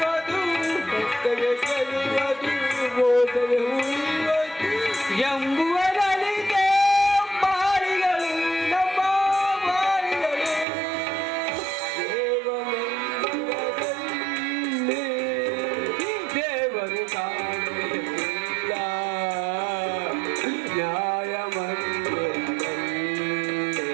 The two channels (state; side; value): drops out; left; at 10.7 s